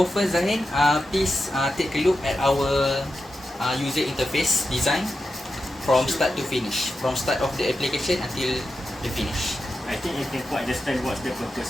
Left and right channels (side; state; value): both; normal; correlation 0.90